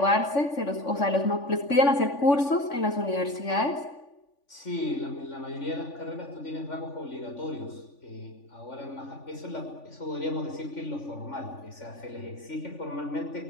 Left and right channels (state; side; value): late; right; 3.5 ms